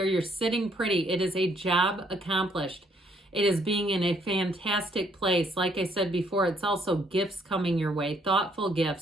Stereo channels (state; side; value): normal; both; correlation 0.68